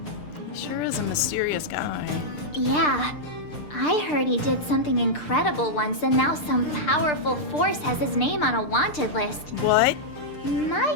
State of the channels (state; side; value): late; right; 6.7 ms